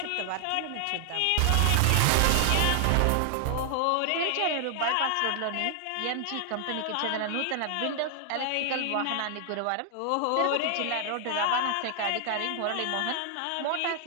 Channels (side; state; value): both; different; correlation 0.00